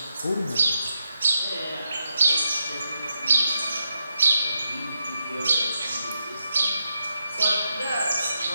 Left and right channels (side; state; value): both; inverted; correlation -0.83